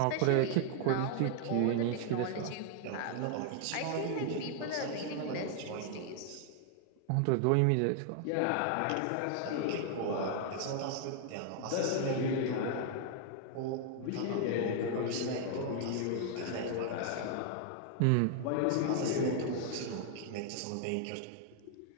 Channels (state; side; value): different; both; correlation 0.00